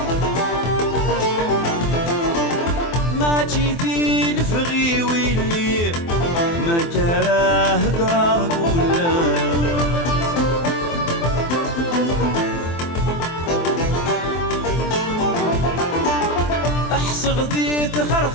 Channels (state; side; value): late; right; 24 ms